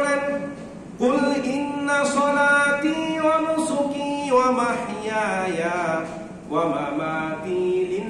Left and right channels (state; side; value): identical; both; correlation 1.00